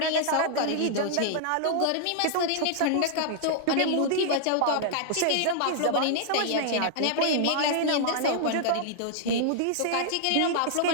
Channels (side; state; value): both; different; correlation -0.01